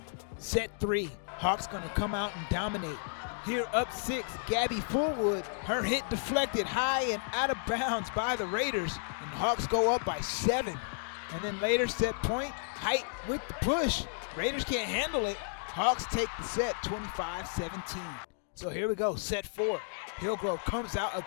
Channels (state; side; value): silent; right; digital silence